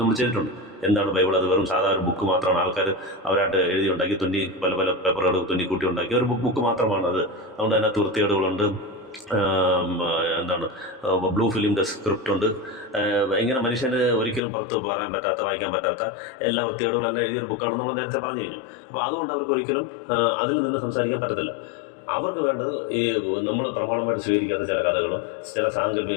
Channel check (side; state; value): right; drops out; at 14.4 s